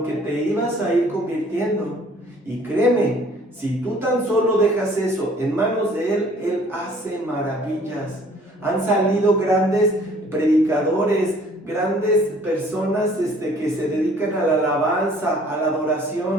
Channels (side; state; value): both; normal; correlation 0.55